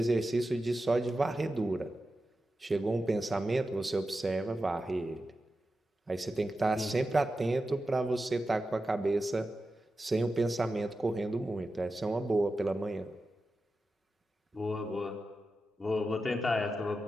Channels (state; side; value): normal; both; correlation 0.91